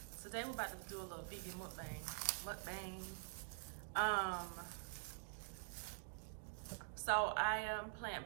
today we're about to do a little vegan mukbang. So I am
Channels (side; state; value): left; silent; digital silence